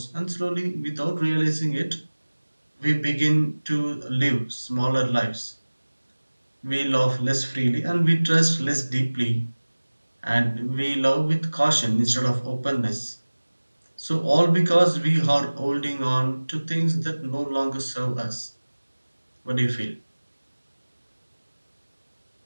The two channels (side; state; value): both; inverted; correlation -1.00